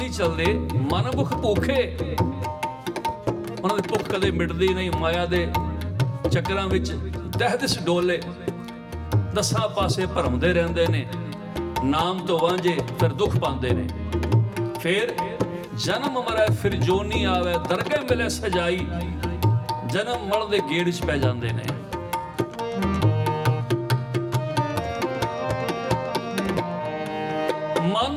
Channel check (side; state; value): both; identical; correlation 1.00